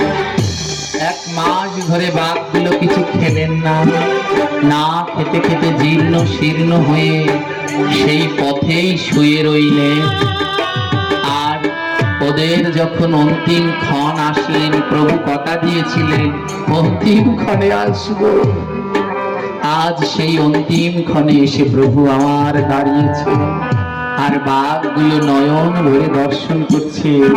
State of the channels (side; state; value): both; identical; correlation 1.00